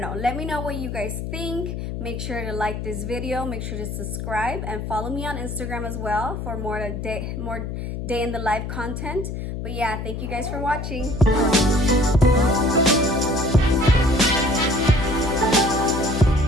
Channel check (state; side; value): noise; left; hum, 5 dB below the sound